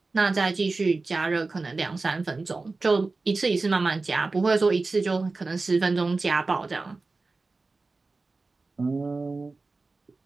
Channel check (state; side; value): quieter; left; 3.7 dB